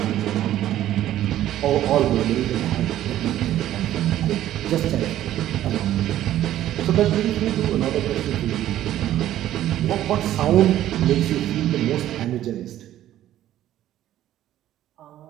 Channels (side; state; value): left; quieter; 12.9 dB